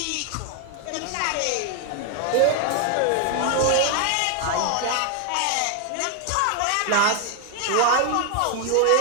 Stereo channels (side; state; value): both; different; correlation 0.00